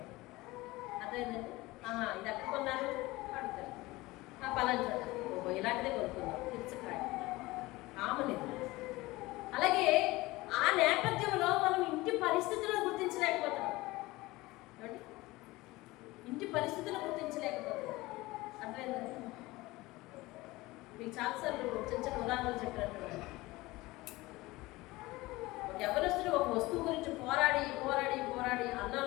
అదేంటంటే ఇది ఎక్కడ కొన్నారు అడుగుతారు, పలానా ఇలాంటిదే కొనుక్కుందాం, తెచ్చుకాయ కామన్ ఇది. అలాగే ఆ నేపథ్యంలో మనం ఇంటి పరిస్థితులను గుర్తించలేకపోతున్నాం. ఏమండి, ఇంటి పరిస్థితులను గుర్తించలేకపోతున్నాం. అర్థమైందండి? మీకు చాలాసార్లు చిన్న చిన్న ఉదాహరణలు చెప్పినట్టు, యవ్వనస్తుడు ఒక వస్తువు గురించి పోరాడి పోరాడి పోరాడి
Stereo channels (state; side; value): quieter; right; 20.3 dB